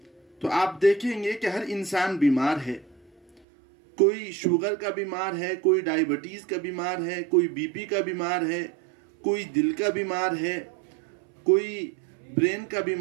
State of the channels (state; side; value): drops out; left; at 3.4 s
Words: تو آپ دیکھیں گے کہ ہر انسان بیمار ہے۔ کوئی شوگر کا بیمار ہے، کوئی ڈائیبٹیز کا بیمار ہے، کوئی بی پی کا بیمار ہے، کوئی دل کا بیمار ہے، کوئی برین کا